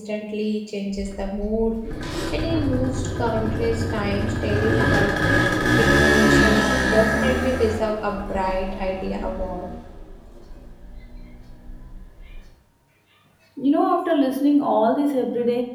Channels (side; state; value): both; identical; correlation 1.00